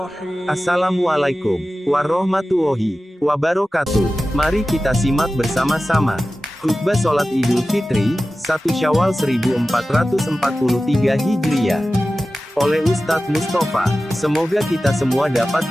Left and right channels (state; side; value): normal; both; correlation 0.95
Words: Assalamualaikum warahmatullahi wabarakatuh. Mari kita simak bersama-sama khutbah sholat Idul Fitri 1 Syawal 1443 Hijriah oleh Ustadz Mustafa. Semoga kita semua dapat